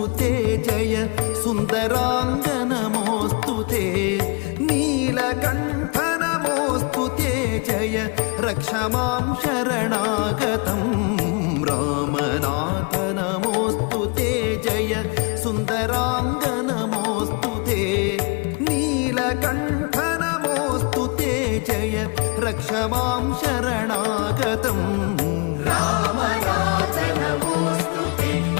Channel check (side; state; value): right; quieter; 32.0 dB